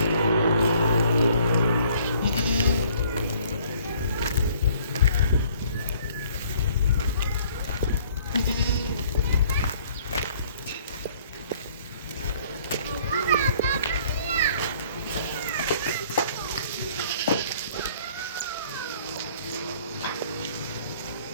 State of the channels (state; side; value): inverted; both; correlation -0.58